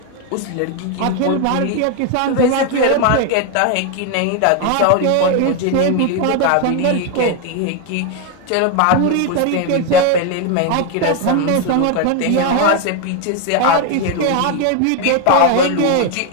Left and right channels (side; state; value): both; different; correlation 0.01